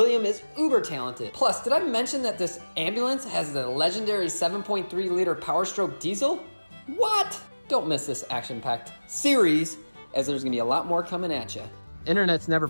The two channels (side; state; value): both; inverted; correlation -1.00